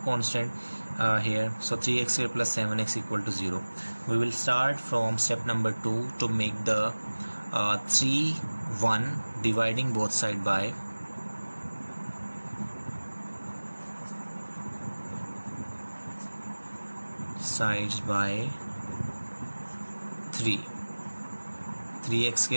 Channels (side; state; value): both; inverted; correlation -1.00